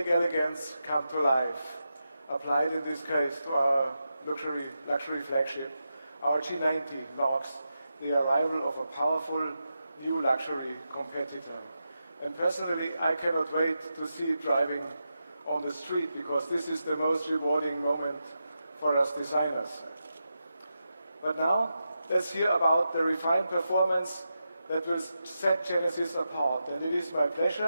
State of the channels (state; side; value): inverted; both; correlation -0.88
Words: elegance come to life, applied in this case to our luxury flagship. Our G90 marks the arrival of a powerful new luxury competitor. And personally, I cannot wait to see it driving on the street, because this is the most rewarding moment for us designers. But now, let's hear about the refined performance that will set Genesis apart. And it is my